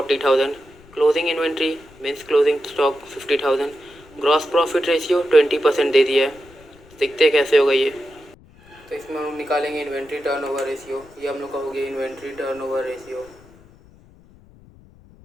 closing inventory means closing stock 50,000, gross profit ratio 20% दे दिया है। देखते हैं कैसे होगा ये। तो इसमें हम निकालेंगे इन्वेंट्री टर्नओवर रेशियो, ये हम लोग का हो गया inventory turnover ratio,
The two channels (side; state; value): left; noise; rumble, 26 dB below the sound